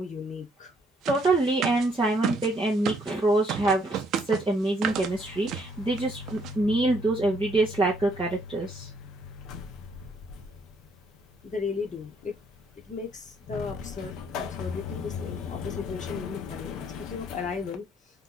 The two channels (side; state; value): both; normal; correlation 0.68